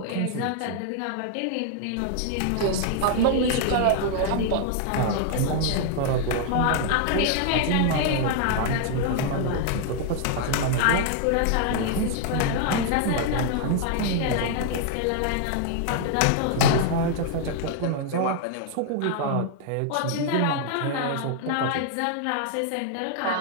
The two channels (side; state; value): both; different; correlation 0.00